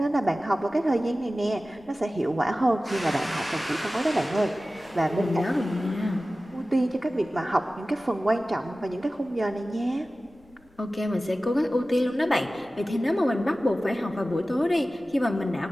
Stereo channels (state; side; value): noise; left; rumble, 29 dB below the sound